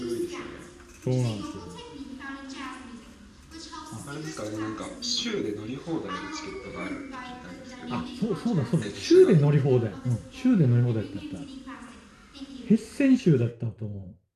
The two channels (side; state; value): both; identical; correlation 1.00